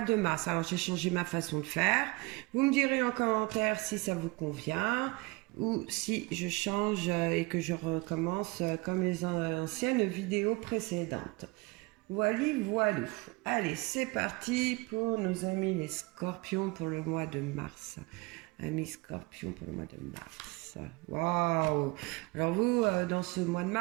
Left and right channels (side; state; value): left; quieter; 25.1 dB